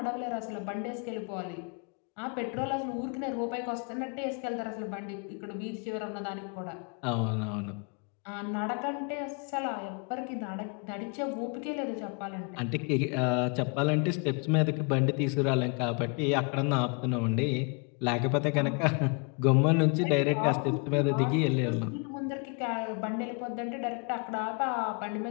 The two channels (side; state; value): right; quieter; 35.7 dB